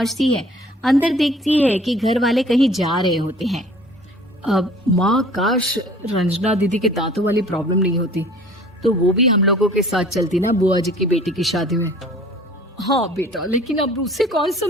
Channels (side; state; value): both; normal; correlation 0.50